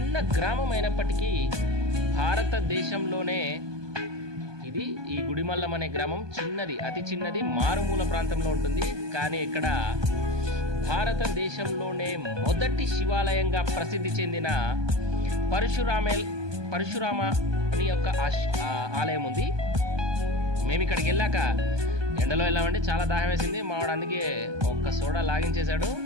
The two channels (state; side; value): late; left; 1.2 ms